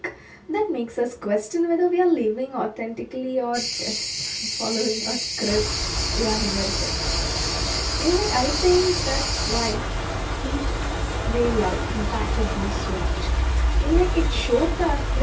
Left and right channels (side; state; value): both; identical; correlation 1.00